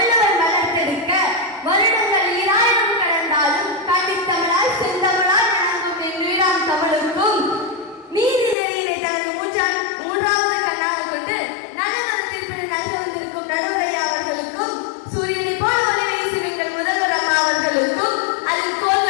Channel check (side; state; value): right; drops out; at 8.6 s